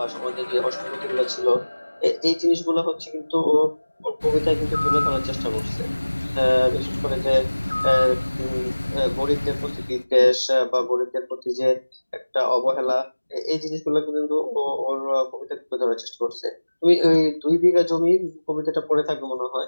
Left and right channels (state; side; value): inverted; both; correlation -1.00